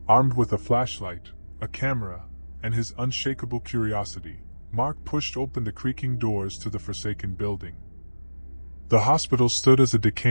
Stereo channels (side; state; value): both; inverted; correlation -1.00